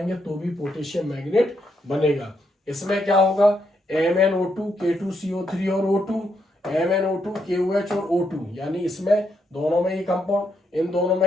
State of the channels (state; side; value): normal; both; correlation 0.78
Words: तो भी पोटेशियम मैग्नेट बनेगा। इसमें क्या होगा, MnO2 K2CO3 और O2, MnO2 KOH और O2, यानी इसमें दोनों में ये कंपाउंड, इन दोनों